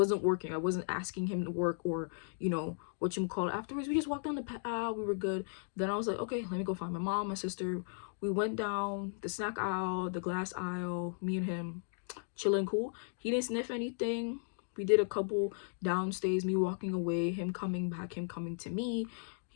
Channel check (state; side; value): silent; right; digital silence